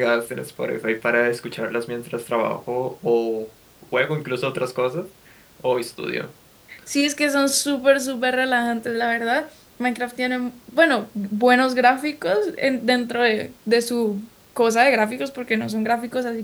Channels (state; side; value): identical; both; correlation 1.00